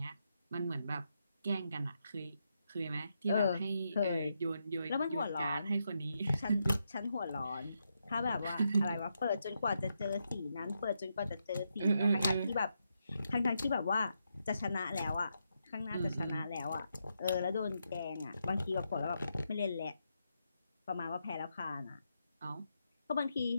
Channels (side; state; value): both; inverted; correlation -0.83